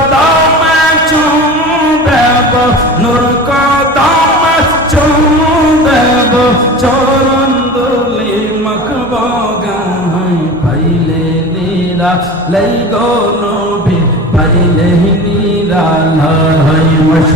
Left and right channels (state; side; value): normal; both; correlation 0.34